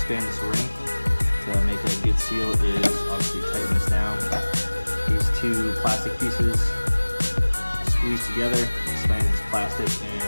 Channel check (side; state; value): both; inverted; correlation -1.00